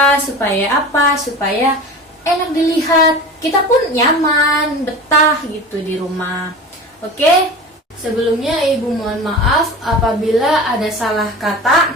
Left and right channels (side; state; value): both; normal; correlation 0.34